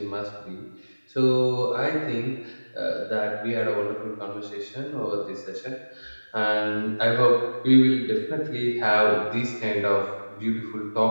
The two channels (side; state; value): both; inverted; correlation -1.00